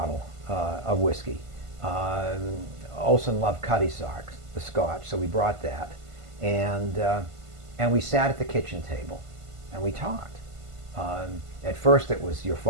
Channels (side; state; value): left; late; 1.5 ms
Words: of whiskey. Olson loved Cutty Sark, the Scotch, so we brought that. And we sat at the kitchen table, and we talked. At first it was your